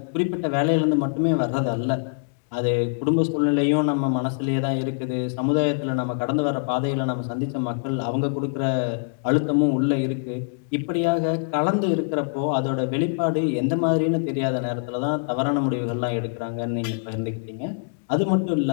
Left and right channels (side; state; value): right; silent; digital silence